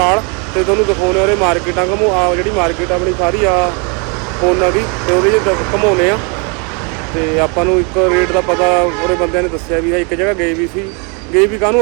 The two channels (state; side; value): quieter; left; 34.2 dB